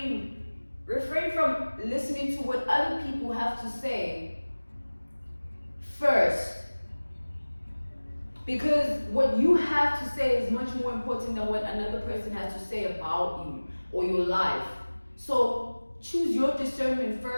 from listening to what other people have to say first. Because what you have to say is much more important than what another person has to say about you or your life. So choose your discernment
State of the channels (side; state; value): both; inverted; correlation -1.00